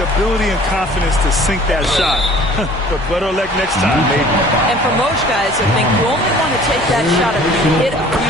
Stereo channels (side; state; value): left; noise; hum, 18 dB below the sound